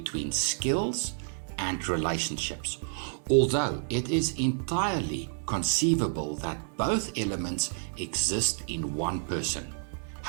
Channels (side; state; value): left; silent; 58 dB below the other